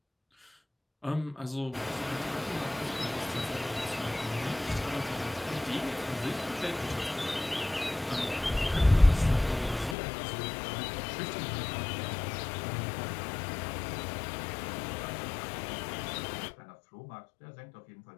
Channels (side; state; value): right; drops out; at 10.0 s